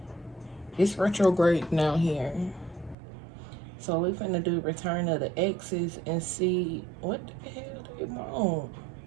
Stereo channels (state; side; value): drops out; left; at 3.0 s